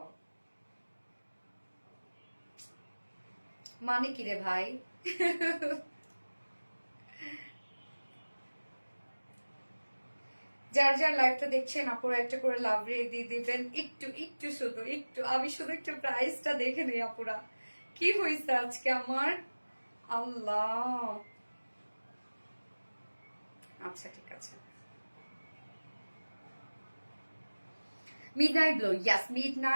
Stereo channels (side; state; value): both; inverted; correlation -1.00